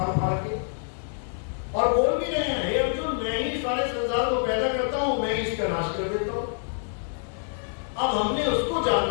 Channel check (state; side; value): silent; right; digital silence